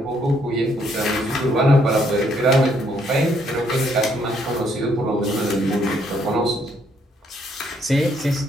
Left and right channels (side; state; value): both; normal; correlation 0.70